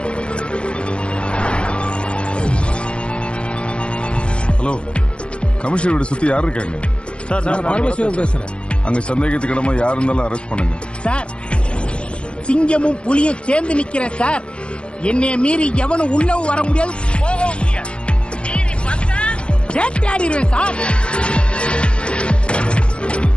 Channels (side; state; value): right; late; 0.057 ms